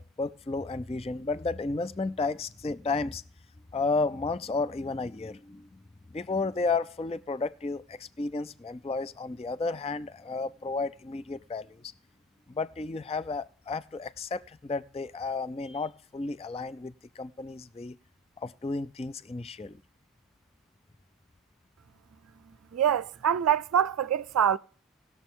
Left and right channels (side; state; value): both; normal; correlation 0.32